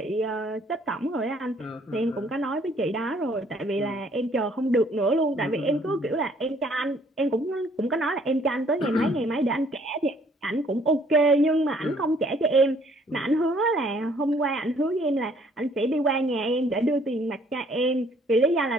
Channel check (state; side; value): normal; both; correlation 0.62